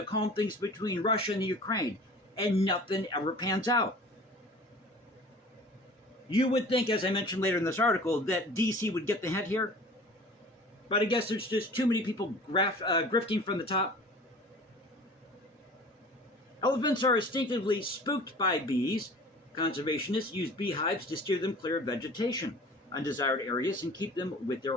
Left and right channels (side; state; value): both; normal; correlation 0.43